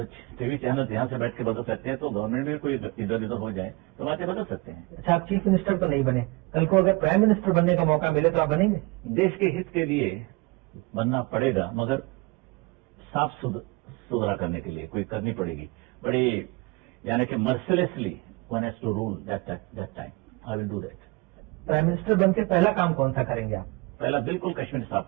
टीवी चैनल यहाँ से बैठ के बदल सकते हैं, तो गवर्नमेंट में कोई इधर उधर हो जाए तो बातें बदल सकते हैं। अच्छा, आप चीफ मिनिस्टर तो नहीं बने, कल को अगर प्राइम मिनिस्टर बनने का मौका मिले तो आप बनेंगे? देश के हित के लिए बनना पड़ेगा, मगर साफ सुथरा करने के लिए कोई करनी पड़ेगी। बड़ी यानी कि mercilessly one has to rule that time. I will do that. Prime minister बन के पहला काम कौन सा करेंगे आप? पहला बिल्कुल कश्मीर साफ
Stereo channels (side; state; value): left; quieter; 24.1 dB